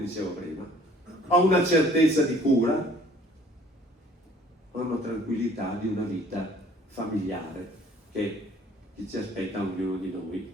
prima, a una certezza di cura, a una tranquillità di una vita familiare che ci aspetta ognuno di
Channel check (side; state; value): both; normal; correlation 0.55